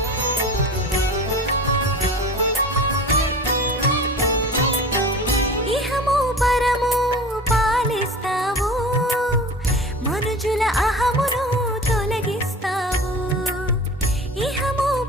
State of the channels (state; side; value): normal; both; correlation 0.37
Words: ఇహము పరము పాలిస్తావు మనుజుల అహమును తొలగిస్తావు ఇహము